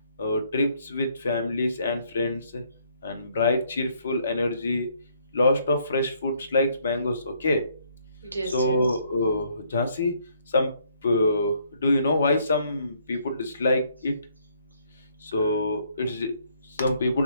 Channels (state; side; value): inverted; both; correlation -0.68